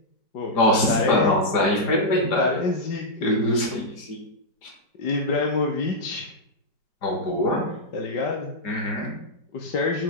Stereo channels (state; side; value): late; right; 5.0 ms